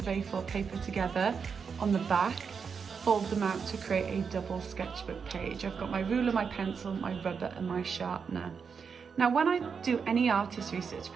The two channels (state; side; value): quieter; left; 6.0 dB